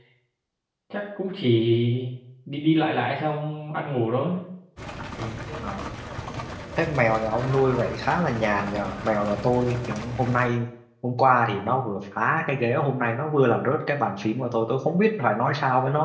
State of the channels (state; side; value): identical; both; correlation 1.00